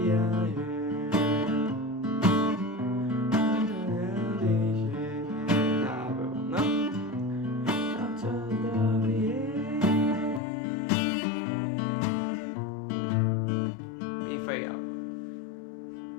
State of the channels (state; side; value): drops out; right; at 10.4 s